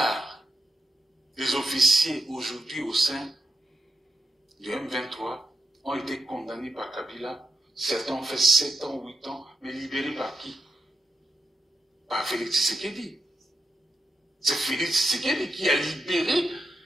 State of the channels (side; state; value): both; normal; correlation 0.87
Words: des officiers aujourd'hui au sein du M23 ont été condamnés par Kabila. Certains ont fait 7 ans, 8 ans, mais libérés par qui? Par Félix Tshisekedi. C'est Félix Tshisekedi qui a libéré